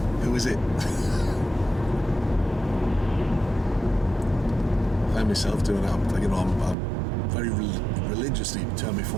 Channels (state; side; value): drops out; left; at 6.8 s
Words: who is it? I find myself doing that. Like, I'm very religiously turn my